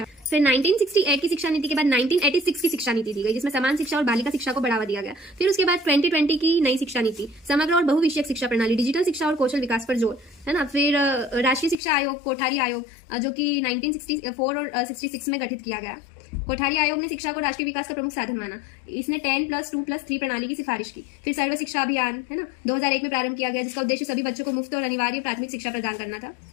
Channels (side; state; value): right; drops out; at 11.8 s